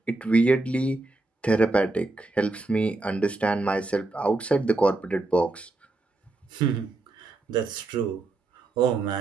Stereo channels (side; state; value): left; quieter; 3.1 dB